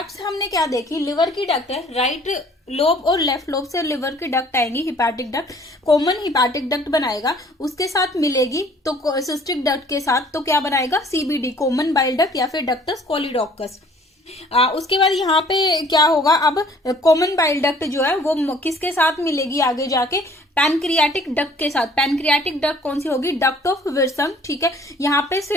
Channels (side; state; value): both; normal; correlation 0.55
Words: हमने क्या देखी, लिवर की डक्ट है, राइट लोब और लेफ्ट लोब से लिवर की डक्ट आएंगी, hepatic duct, common hepatic duct बनाएगा, उसके साथ मिलेगी तो सिस्टिक डक्ट के साथ तो क्या बनाएगा, सीबीडी, कॉमन बाइल डक्ट या फिर डक्टस कोलिडोकस। उसके बाद यहाँ पे क्या होगा, अब कॉमन बाइल डक्ट जो है वो किसके साथ मिलेगी आगे जाके, पैनक्रियाटिक डक्ट के साथ। पैनक्रियाटिक डक्ट कौन सी होगी, डक्ट ऑफ विर्संग, ठीक है। यहाँ पे